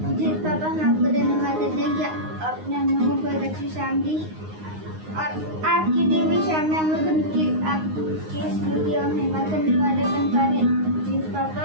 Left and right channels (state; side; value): late; left; 9.6 ms